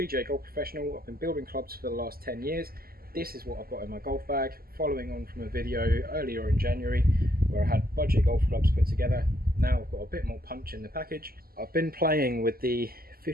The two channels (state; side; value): late; left; 0.43 ms